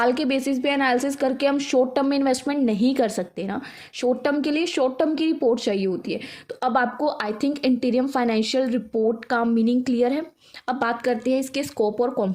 के बेसिस पे एनालिसिस करके हम शॉर्ट टर्म में इन्वेस्टमेंट नहीं कर सकते ना, शॉर्ट टर्म के लिए शॉर्ट टर्म की रिपोर्ट चाहिए होती है। तो अब आपको आई थिंक इंटीरियम फाइनेंशियल रिपोर्ट का मीनिंग क्लियर है। अब बात करते हैं इसके स्कोप और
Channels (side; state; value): both; identical; correlation 1.00